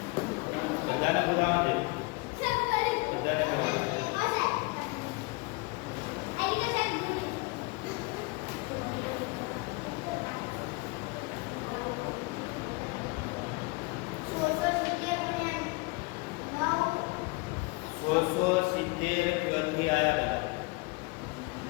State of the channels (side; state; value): right; quieter; 26.6 dB